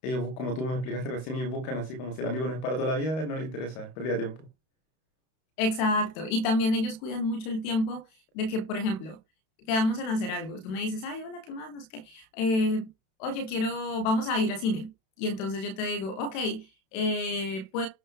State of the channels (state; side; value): late; right; 32 ms